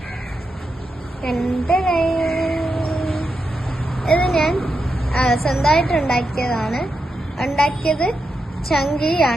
ഇത് ഞാൻ സ്വന്തമായിട്ട് ഉണ്ടാക്കിയത്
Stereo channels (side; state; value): both; normal; correlation 0.86